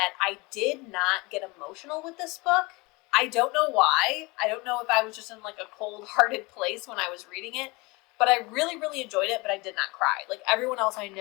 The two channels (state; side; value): quieter; right; 25.1 dB